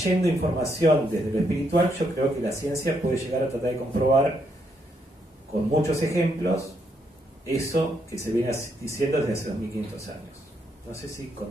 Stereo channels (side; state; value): both; normal; correlation 0.76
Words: información desde lo espiritual, yo creo que la ciencia puede llegar a tratar de comprobar con muchos ejemplos eso que se viene diciendo desde hace 2500 años. No sé si